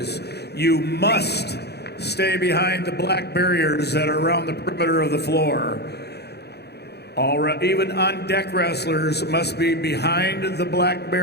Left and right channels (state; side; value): late; right; 0.48 ms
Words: you must stay behind the black barriers that are around the perimeter of the floor. Even on-deck wrestlers must be behind the black